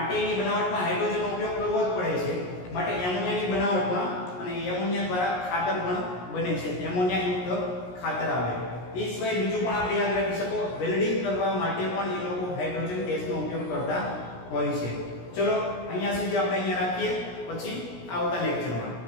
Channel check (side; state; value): right; late; 17 ms